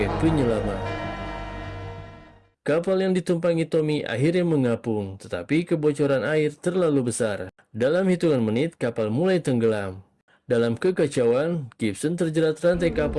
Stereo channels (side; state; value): both; identical; correlation 1.00